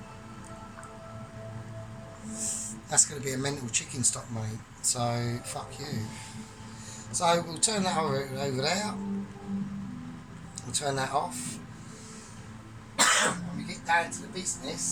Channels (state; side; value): identical; both; correlation 1.00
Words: that's going to be a mental chicken stock, mate. So, fuck you. So, we'll turn that over there. We'll turn that off. And we get down to the